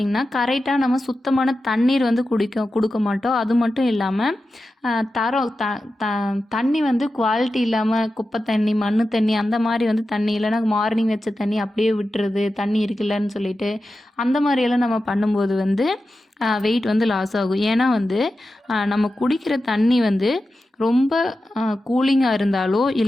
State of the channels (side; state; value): both; normal; correlation 0.92